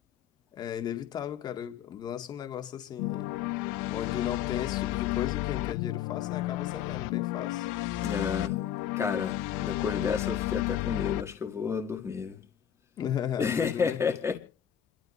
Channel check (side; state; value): right; quieter; 9.3 dB